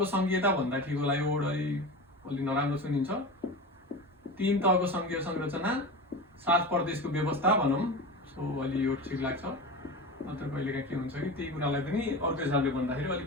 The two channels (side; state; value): both; normal; correlation 0.27